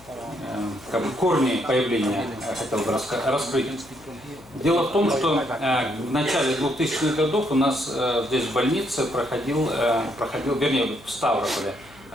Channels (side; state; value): left; noise; hum, 24 dB below the sound